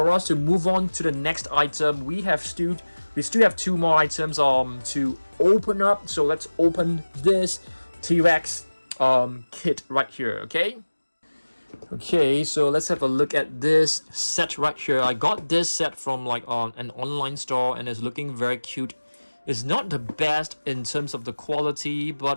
us to move on to the next item. We still have 2 more items to open up. So let's open this T-Rex kit right here. Okay, so let's have a look at this set right here. I got this set from like an online store, and it's looking very cute. It's not the best in terms of the quality, but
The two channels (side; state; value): both; inverted; correlation -1.00